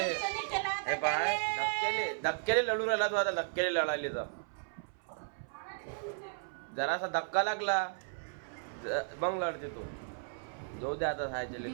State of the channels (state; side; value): silent; left; 55 dB below the other